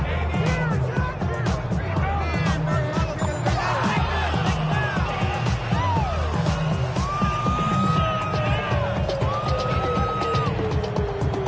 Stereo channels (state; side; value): identical; both; correlation 1.00